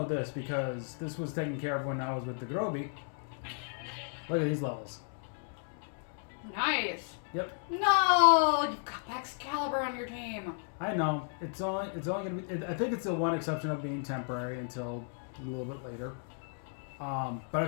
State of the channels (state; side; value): silent; right; 55 dB below the other